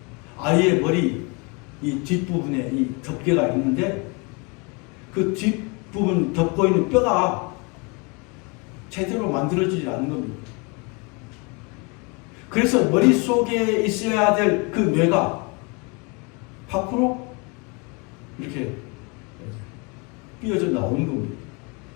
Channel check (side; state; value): right; quieter; 30.9 dB